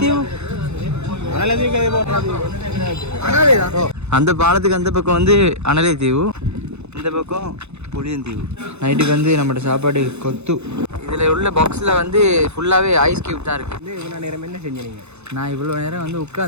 அந்த பாலத்துக்கு அந்த பக்கம் வந்து அனலைத்தீவு, இந்த பக்கம் புளியந்தீவு. நைட்டுக்கு வந்து நம்மளோட சாப்பாடு கொத்து. இதில் உள்ள பாக்ஸில் வந்து ஃபுல்லாகவே ஐஸ் கியூப் தான் இருக்குது. இவ்வளோ நேரம் என்ன செஞ்சீங்க? நான் இவ்வளோ நேரம் வந்து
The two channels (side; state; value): left; late; 0.81 ms